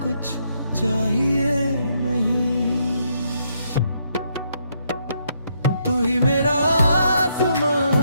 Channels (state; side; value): inverted; both; correlation -0.76